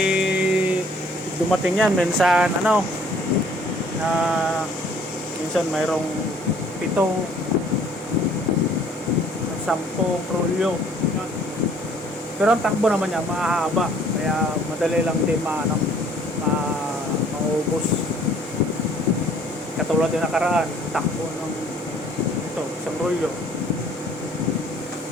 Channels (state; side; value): normal; both; correlation 0.58